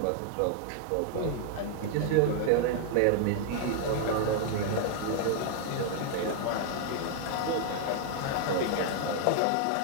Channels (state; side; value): different; both; correlation 0.00